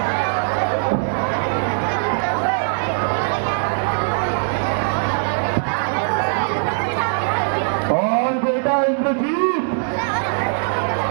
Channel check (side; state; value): left; silent; digital silence